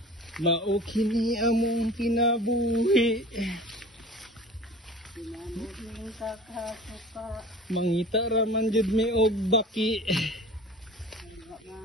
Mao kini among kinabuhi. Mangita ra man jud mi og baki.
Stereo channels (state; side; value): normal; both; correlation 0.41